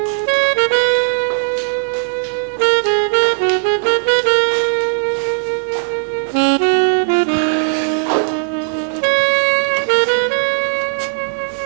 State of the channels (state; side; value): silent; left; 62 dB below the other